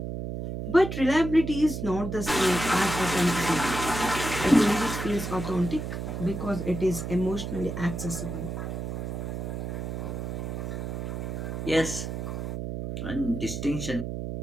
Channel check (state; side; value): noise; right; hum, 5 dB below the sound